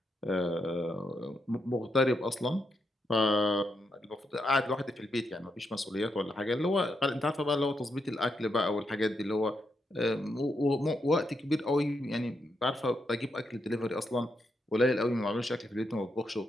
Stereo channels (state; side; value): normal; both; correlation 0.82